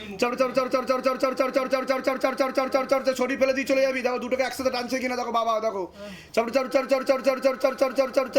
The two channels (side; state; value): both; identical; correlation 1.00